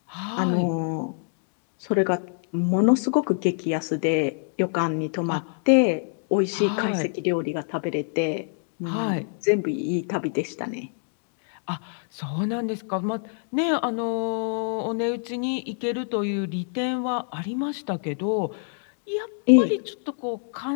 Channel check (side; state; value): right; silent; 58 dB below the other